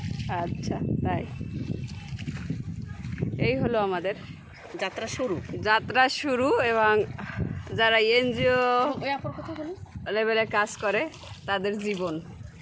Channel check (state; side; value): identical; both; correlation 1.00